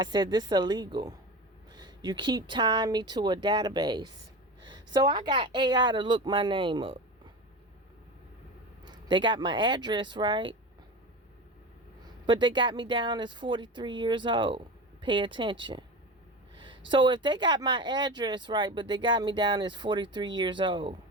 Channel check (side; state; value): both; normal; correlation 0.28